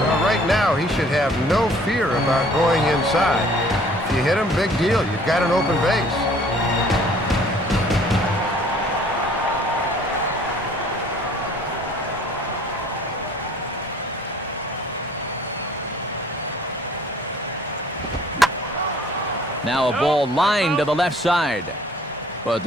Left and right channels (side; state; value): both; normal; correlation 0.55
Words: right now, he should have no fear about going inside. If you hit him, big deal. You've got an open base. Now a ball lined to the left side, but